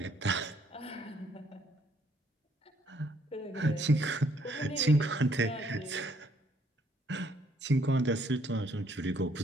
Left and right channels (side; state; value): both; normal; correlation 0.67